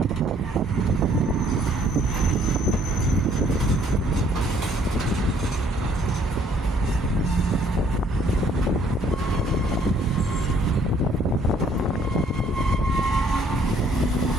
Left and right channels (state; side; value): normal; both; correlation 0.63